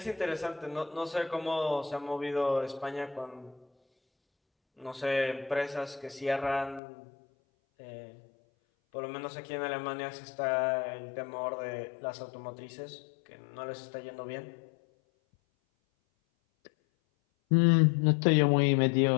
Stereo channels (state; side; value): drops out; right; at 6.8 s